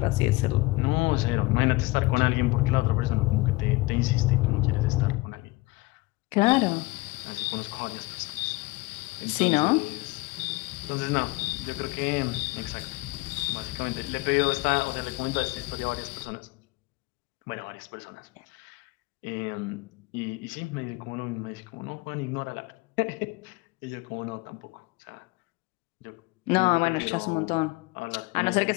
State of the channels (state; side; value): quieter; right; 22.1 dB